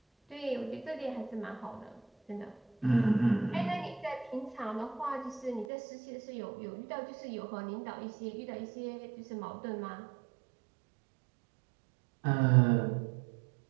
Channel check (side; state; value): left; drops out; at 5.7 s